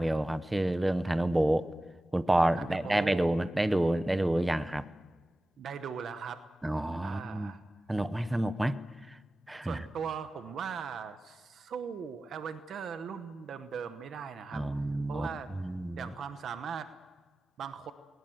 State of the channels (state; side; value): normal; both; correlation 0.96